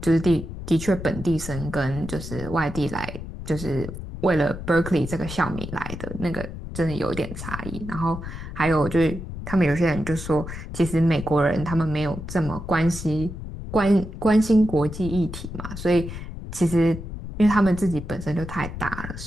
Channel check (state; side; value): noise; left; rumble, 9 dB below the sound